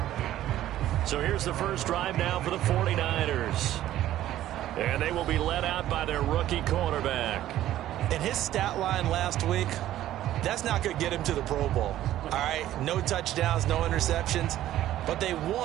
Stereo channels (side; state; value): left; quieter; 13.3 dB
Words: So here's the first drive now for the 49ers. And they will be led out by their rookie quarterback. And his stat line last week, that's not going to get him to the Pro Bowl. All right, no touchdowns, no interceptions, but they